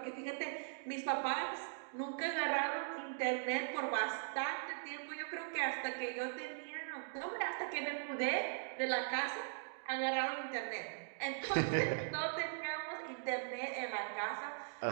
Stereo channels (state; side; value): silent; left; digital silence